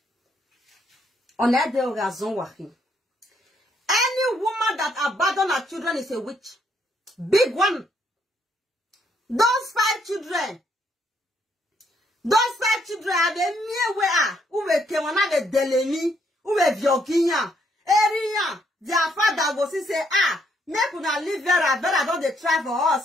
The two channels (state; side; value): normal; both; correlation 0.72